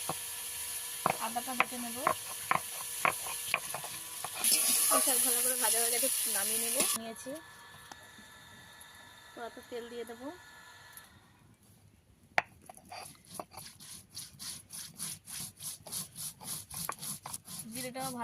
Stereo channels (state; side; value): identical; both; correlation 1.00